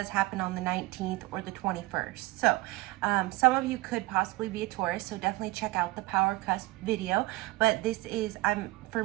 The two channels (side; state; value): left; quieter; 20.1 dB